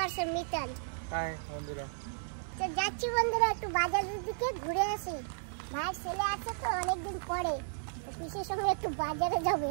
আসছে মিতান। হাই বন্ধুরা। তো যাচ্ছি বন্ধুরা, একটু বাজারের দিকে ঘুরে আসি। ভাইয়ের ছেলে আসছে তো অনেকদিন পরে, তো পিসের সঙ্গে একটু বাজারে যাবে,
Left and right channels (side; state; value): left; silent; 55 dB below the other